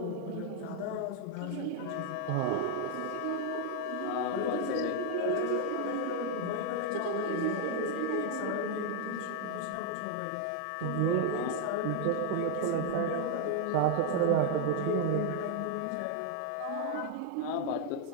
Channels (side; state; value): both; different; correlation 0.00